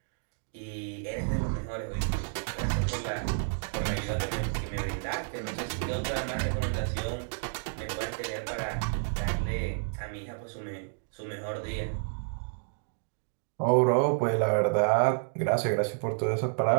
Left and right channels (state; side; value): silent; left; digital silence